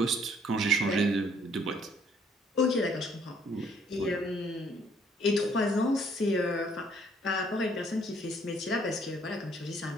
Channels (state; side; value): normal; both; correlation 0.63